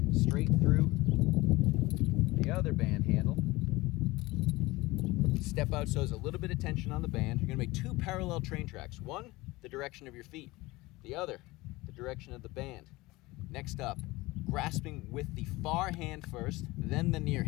straight through the other band handle. Step out so there's a little bit of tension on the band. You're going to make two parallel train tracks. One, the direction of your feet. The other, the direction of the band. Next up, grasping with the far hand first, then the near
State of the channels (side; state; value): right; quieter; 20.8 dB